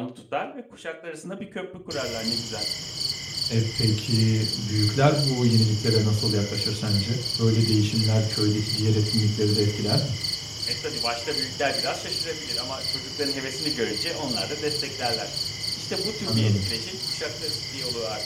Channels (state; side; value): identical; both; correlation 1.00